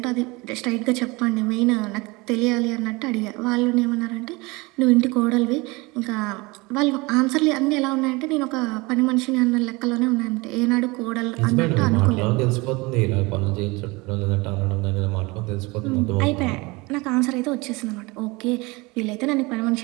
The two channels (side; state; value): left; quieter; 24.5 dB